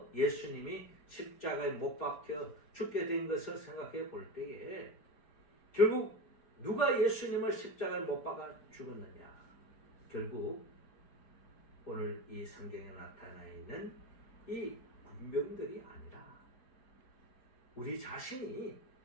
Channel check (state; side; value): late; right; 4.8 ms